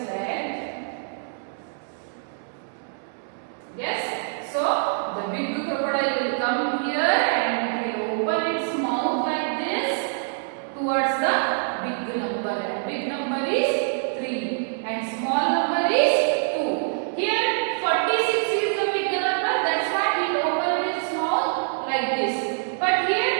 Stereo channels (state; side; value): silent; left; 62 dB below the other